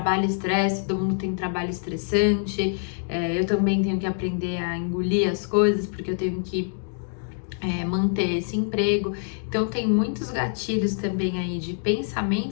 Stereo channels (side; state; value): right; silent; digital silence